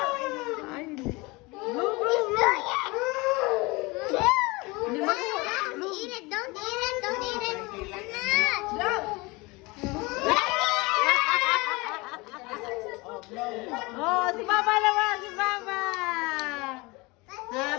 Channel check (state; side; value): quieter; right; 24.6 dB